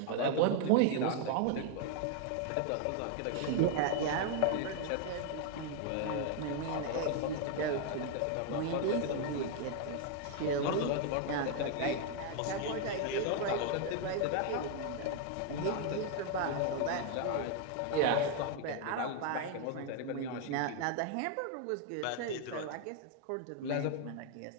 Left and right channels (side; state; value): both; different; correlation 0.00